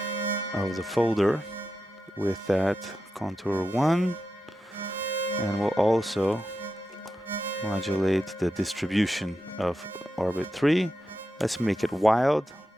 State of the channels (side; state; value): both; normal; correlation 0.89